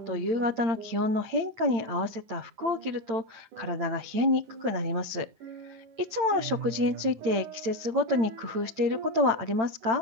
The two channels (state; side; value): late; left; 8.9 ms